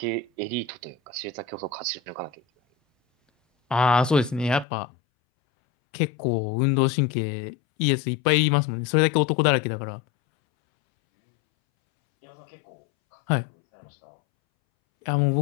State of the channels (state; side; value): drops out; right; at 4.7 s